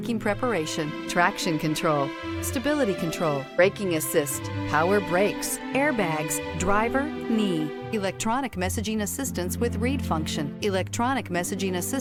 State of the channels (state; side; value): identical; both; correlation 1.00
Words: preparation, traction control, stability control, braking assist, power brakes, airbags, driver, knee, electronic messaging assistance with read function, electronic messaging